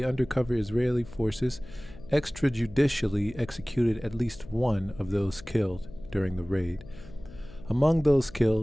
undercover Israeli forces extrajudicially executed at least one of those killed during the raid. Among those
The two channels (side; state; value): left; noise; hum, 18 dB below the sound